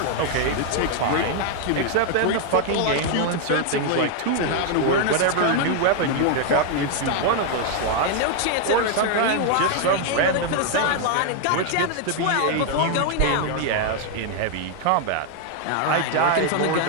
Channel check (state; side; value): different; both; correlation 0.00